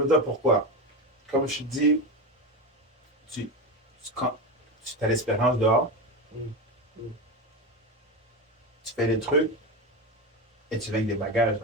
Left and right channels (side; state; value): both; normal; correlation 0.18